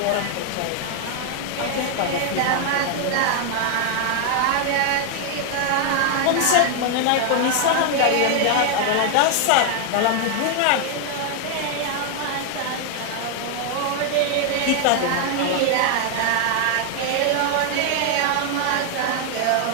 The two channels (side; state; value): both; different; correlation 0.00